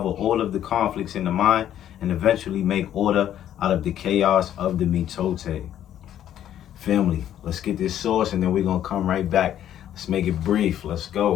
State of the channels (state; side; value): quieter; right; 11.0 dB